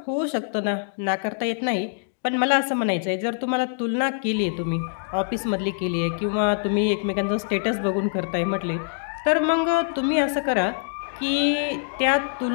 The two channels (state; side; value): silent; right; digital silence